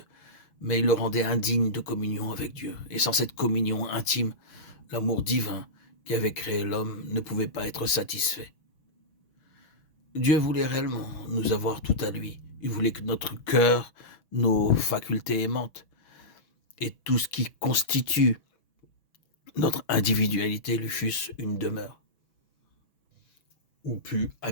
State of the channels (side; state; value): right; late; 6.1 ms